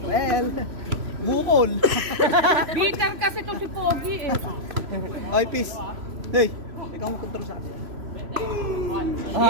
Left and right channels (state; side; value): late; left; 3.0 ms